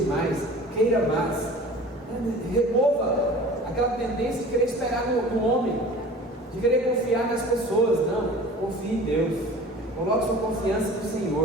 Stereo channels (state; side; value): normal; both; correlation 0.42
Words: mais, queira mais. Remova aquela tendência de querer esperar no homem, de querer confiar nas pessoas, não, confie em Deus, coloque sua confiança no